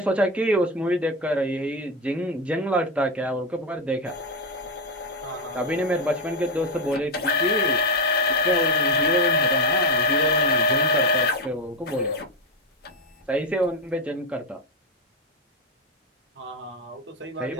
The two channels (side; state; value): both; normal; correlation 0.10